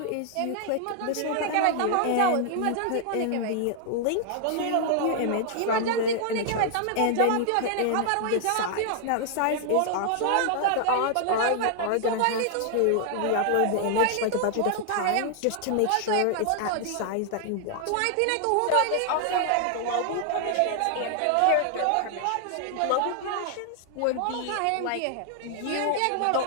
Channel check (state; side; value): different; both; correlation 0.00